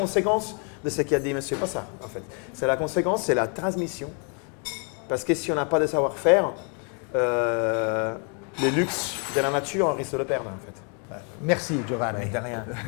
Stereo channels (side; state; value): right; quieter; 38.7 dB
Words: de ce qu'a dit Monsieur Passard. En fait. C'est la conséquence, c'est la transmission. Parce que si on n'a pas de savoir-faire, les luxes de la nature, on risque de le perdre en fait. Merci Giovanni. De rien,